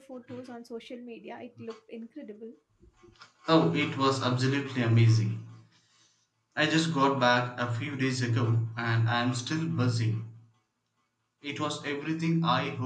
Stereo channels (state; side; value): identical; both; correlation 1.00